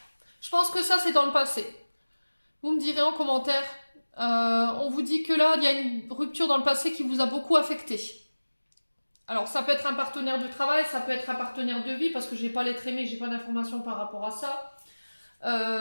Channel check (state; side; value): inverted; both; correlation -1.00